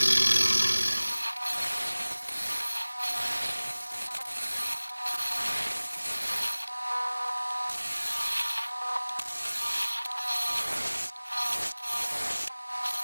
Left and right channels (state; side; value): inverted; both; correlation -1.00